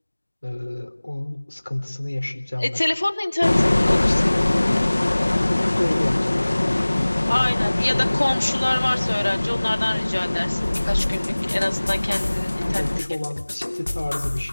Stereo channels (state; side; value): inverted; both; correlation -1.00